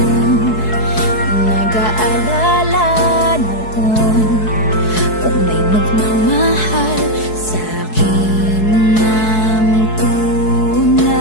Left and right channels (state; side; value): late; right; 4.7 ms